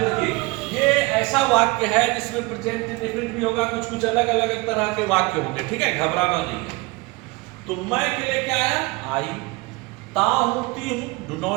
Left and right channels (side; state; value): left; quieter; 24.5 dB